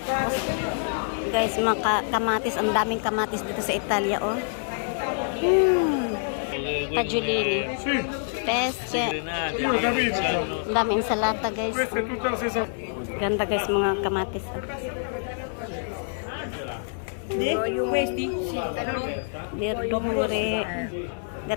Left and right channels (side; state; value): right; silent; digital silence